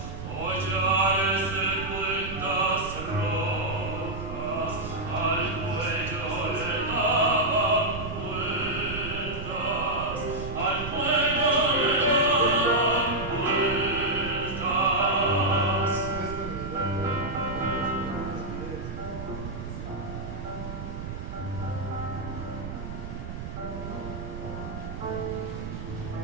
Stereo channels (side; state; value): right; noise; rumble, 8 dB below the sound